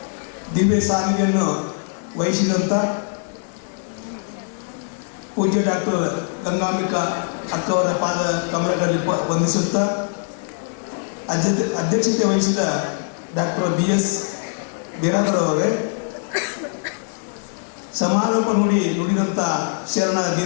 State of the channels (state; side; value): silent; right; digital silence